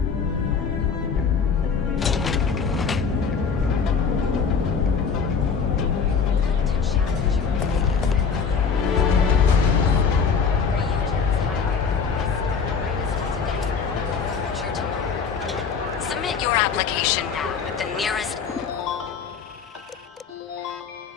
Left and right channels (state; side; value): quieter; right; 5.8 dB